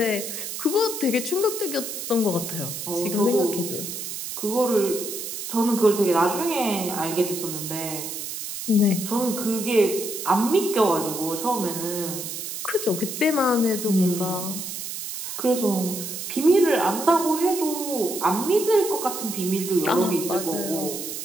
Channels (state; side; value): noise; right; hiss, 6 dB below the sound